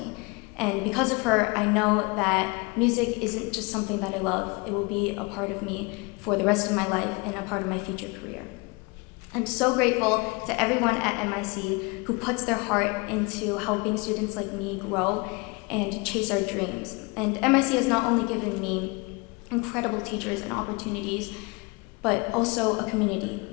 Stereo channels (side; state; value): right; quieter; 27.7 dB